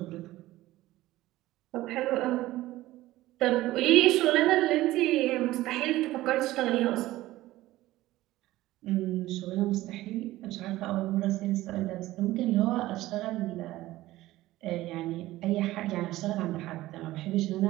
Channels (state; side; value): quieter; left; 16.6 dB